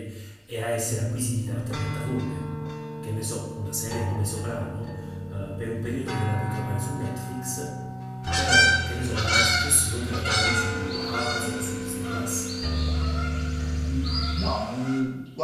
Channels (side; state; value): both; identical; correlation 1.00